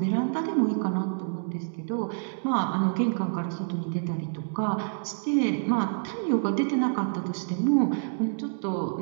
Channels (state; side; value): silent; left; digital silence